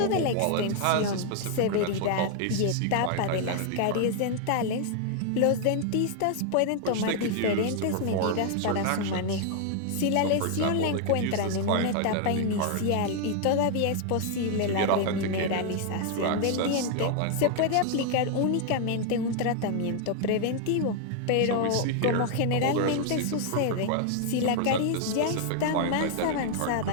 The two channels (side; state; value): both; different; correlation 0.00